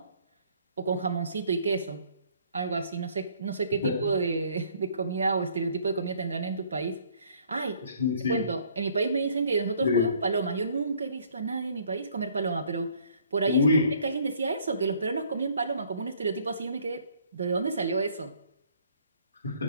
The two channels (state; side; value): inverted; both; correlation -0.60